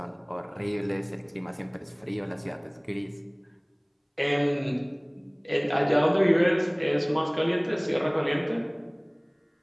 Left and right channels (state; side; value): identical; both; correlation 1.00